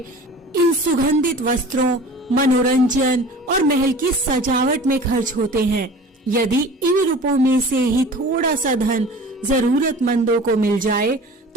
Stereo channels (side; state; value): both; normal; correlation 0.41